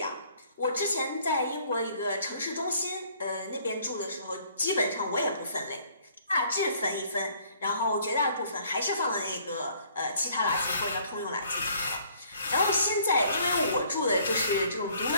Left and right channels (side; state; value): both; inverted; correlation -0.59